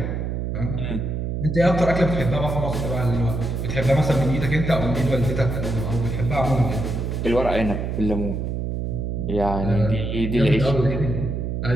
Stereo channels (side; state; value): right; noise; hum, 2 dB below the sound